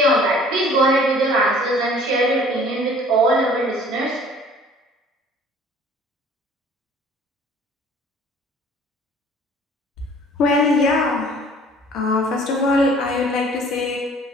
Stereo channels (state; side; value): normal; both; correlation 0.52